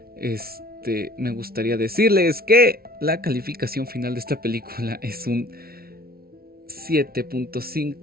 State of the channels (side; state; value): left; late; 0.44 ms